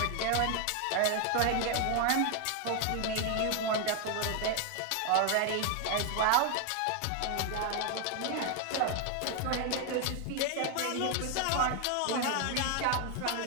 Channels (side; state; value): both; different; correlation 0.01